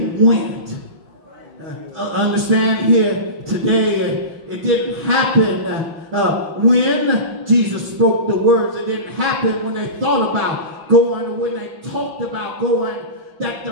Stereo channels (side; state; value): left; late; 6.2 ms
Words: went, understand here today, it didn't happen when Jesus spoke the words. It didn't happen when they thought about going, or when they talked about going. That